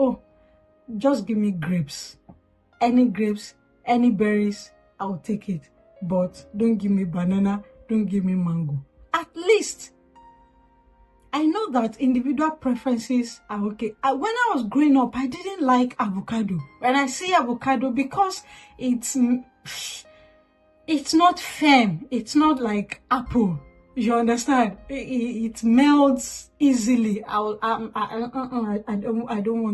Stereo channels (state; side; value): identical; both; correlation 1.00